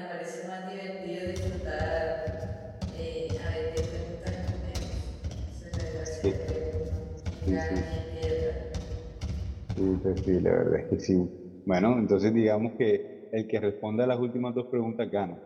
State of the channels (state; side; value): identical; both; correlation 1.00